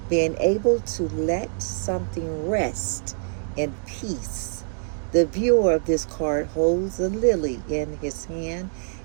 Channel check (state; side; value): silent; left; digital silence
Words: Being able to let something rest in peace. The viewer of this card holds a lily in his hand